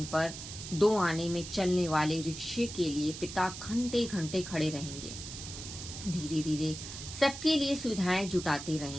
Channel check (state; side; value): noise; right; hiss, 10 dB below the sound